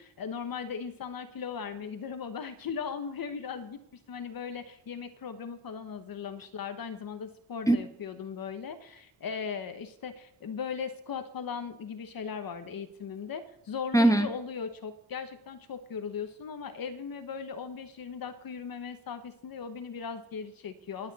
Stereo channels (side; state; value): both; normal; correlation 0.44